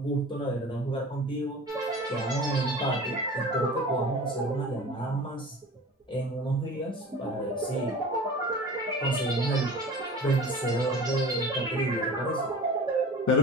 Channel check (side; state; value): both; normal; correlation 0.39